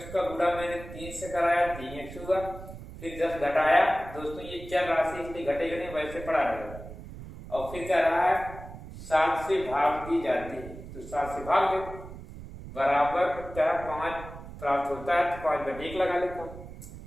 का गुणा मैंने 3 से कराया, 3x हुआ। फिर 10 घटाया। दोस्तों ये चर राशि इसलिए घटेगा नहीं, वैसे पड़ा रहेगा। और फिर क्या रहा है, 7 से भाग दी जाती है, तो 7 से भाग दे, बराबर क्या 5 प्राप्त होता है, तो 5 बटे 1 लगा लेता हूँ।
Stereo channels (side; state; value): right; noise; rumble, 13 dB below the sound